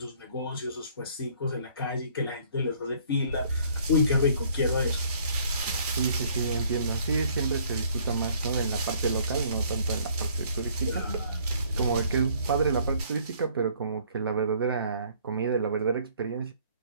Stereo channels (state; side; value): inverted; both; correlation -0.60